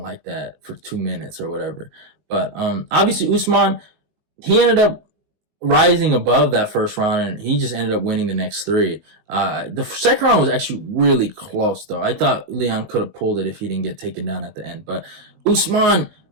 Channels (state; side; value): late; left; 19 ms